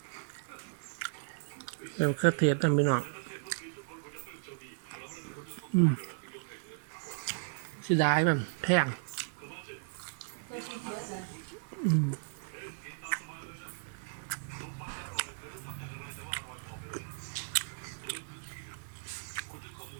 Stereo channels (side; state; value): left; silent; 54 dB below the other